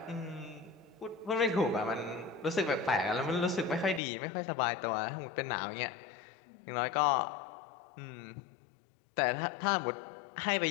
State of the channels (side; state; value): right; drops out; at 4.0 s